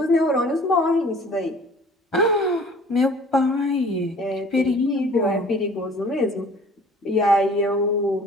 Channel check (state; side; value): normal; both; correlation 0.50